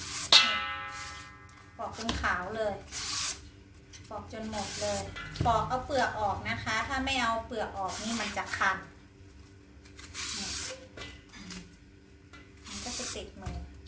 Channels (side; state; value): both; identical; correlation 1.00